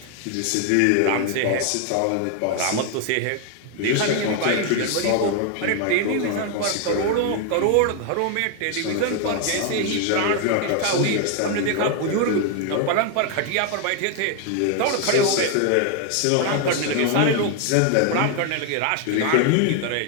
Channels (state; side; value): different; both; correlation 0.01